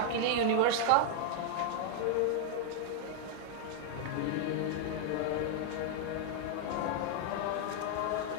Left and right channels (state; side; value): different; both; correlation -0.01